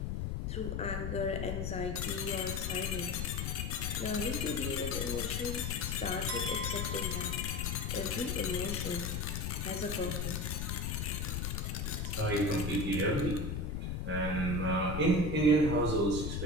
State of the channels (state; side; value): noise; left; rumble, 2 dB below the sound